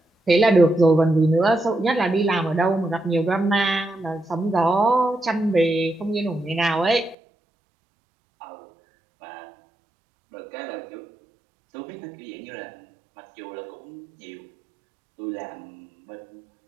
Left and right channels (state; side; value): drops out; left; at 7.2 s